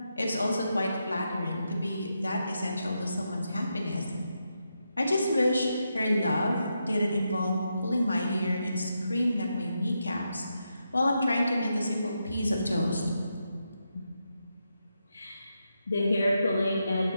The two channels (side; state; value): both; inverted; correlation -0.84